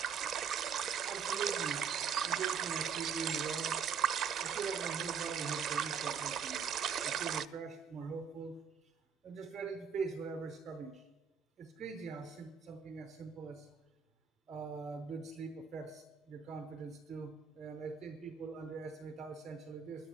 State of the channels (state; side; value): quieter; left; 6.7 dB